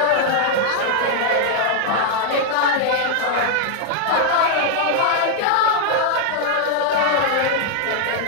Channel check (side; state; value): both; different; correlation 0.00